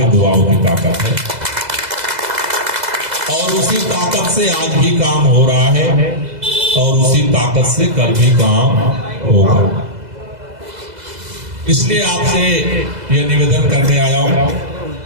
दुआओं की ताकत है, और उसी ताकत से आज भी काम हो रहा है, और उसी ताकत से कल भी काम होगा। इसलिए आपसे ये निवेदन करने आया हूं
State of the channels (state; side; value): late; left; 2.0 ms